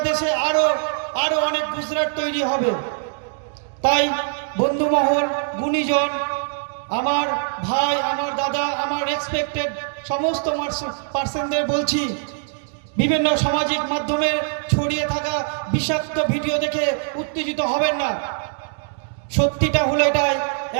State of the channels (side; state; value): left; silent; 64 dB below the other